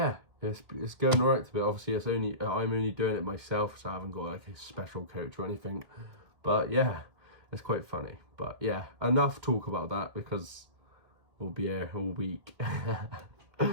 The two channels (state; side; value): late; left; 1.9 ms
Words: it's going alright to be. Obviously, I'm only doing it myself, so I haven't got like a special coach or anything. But yeah, it's quite funny. But yeah, enough talk about that because we'll be here all week.